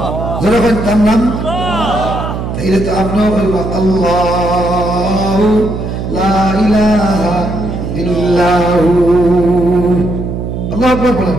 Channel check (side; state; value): right; noise; hum, 5 dB below the sound